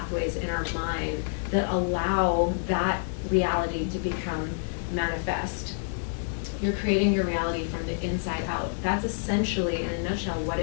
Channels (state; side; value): silent; right; digital silence